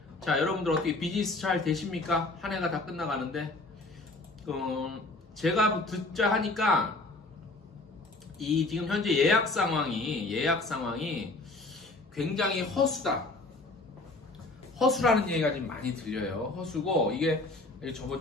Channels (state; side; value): quieter; right; 3.0 dB